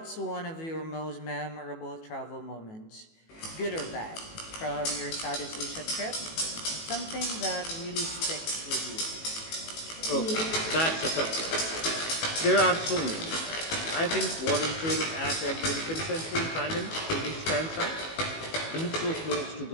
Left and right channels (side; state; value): right; late; 18 ms